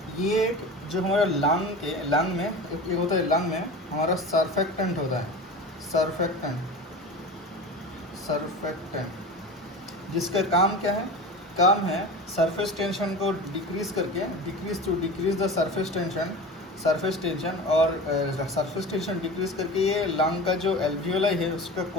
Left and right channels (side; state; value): both; normal; correlation 0.32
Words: ये जो हमारा लंग में एक होता है, लंग में हमारा सर्फेक्टेंट होता है। सर्फेक्टेंट जिसका काम क्या है? काम है सरफेस टेंशन को डिक्रीज करके, डिक्रीज द सरफेस टेंशन और सरफेस टेंशन डिक्रीज करके ये लंग का जो एल्वियोलाई है उसका